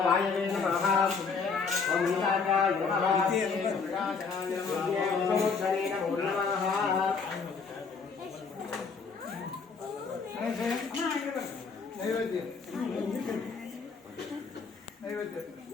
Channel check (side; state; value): right; quieter; 5.1 dB